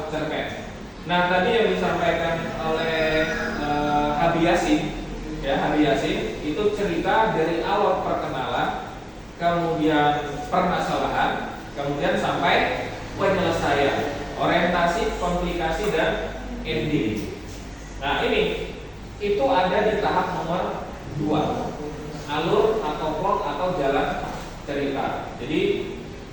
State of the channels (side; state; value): both; identical; correlation 1.00